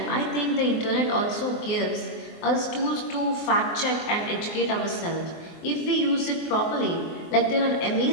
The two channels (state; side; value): late; right; 24 ms